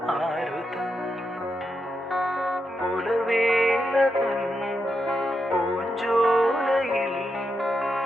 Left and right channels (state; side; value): normal; both; correlation 0.84